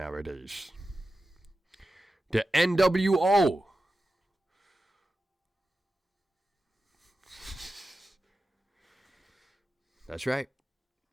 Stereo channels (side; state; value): both; normal; correlation 0.93